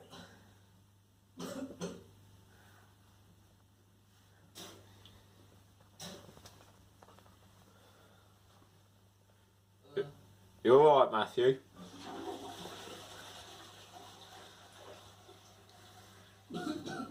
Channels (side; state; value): both; identical; correlation 1.00